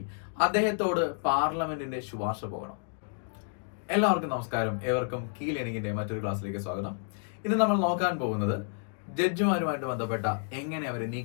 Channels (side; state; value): right; silent; 58 dB below the other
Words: അദ്ദേഹത്തോട് പാർലമെന്റിന്റെ ശുപാർശ പോകണം. എല്ലാവർക്കും നമസ്കാരം, ഏവർക്കും കീ ലേണിംഗിന്റെ മറ്റൊരു ക്ലാസ്സിലേക്ക് സ്വാഗതം. ഇന്ന് നമ്മൾ നോക്കാൻ പോകുന്നത് ജഡ്ജിമാരുമായിട്ട് ബന്ധപ്പെട്ട എങ്ങനെ അവരെ